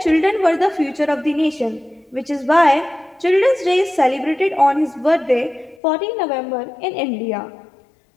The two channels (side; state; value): right; drops out; at 5.8 s